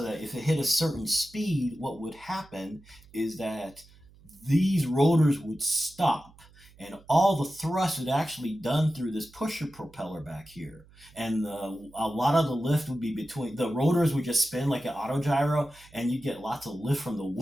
that if it hit a certain speed, what would happen is that these rotors would stop and all the thrust would actually done through this pusher propeller back here. And a lot of the lift would be between the rotors would just spin like an autogyro and you get lots of lift from the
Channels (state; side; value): noise; right; hum, 25 dB below the sound